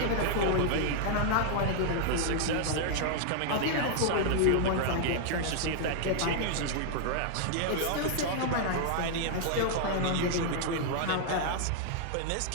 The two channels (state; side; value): different; both; correlation -0.01